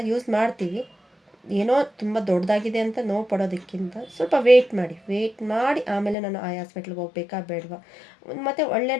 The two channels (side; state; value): right; drops out; at 6.2 s